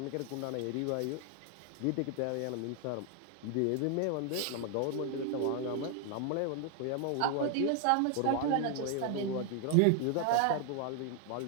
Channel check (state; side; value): different; both; correlation 0.00